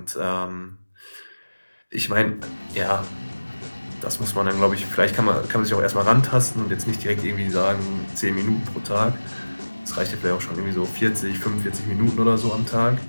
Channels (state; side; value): inverted; both; correlation -1.00